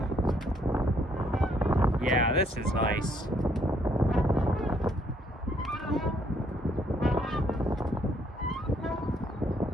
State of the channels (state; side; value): normal; both; correlation 0.68